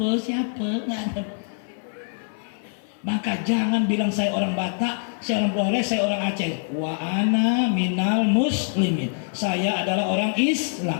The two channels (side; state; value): right; silent; 55 dB below the other